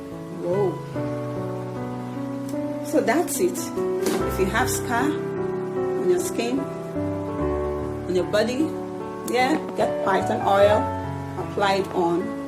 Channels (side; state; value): both; identical; correlation 1.00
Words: Whoa. So that's it. If you have scar on your skin, on your body, yeah, get phython oil, apply it on,